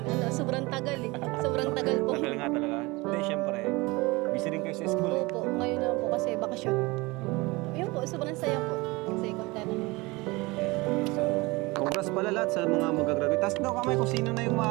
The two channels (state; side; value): quieter; left; 23.5 dB